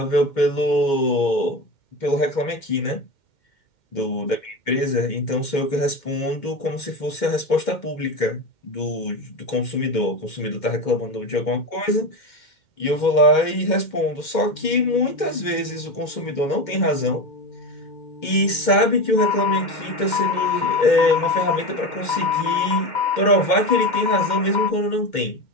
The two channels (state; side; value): late; right; 2.1 ms